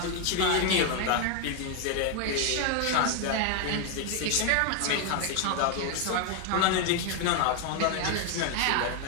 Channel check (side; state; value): both; different; correlation 0.01